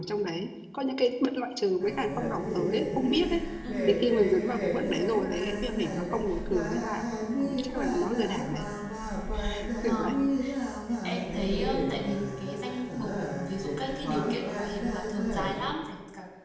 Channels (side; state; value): both; identical; correlation 1.00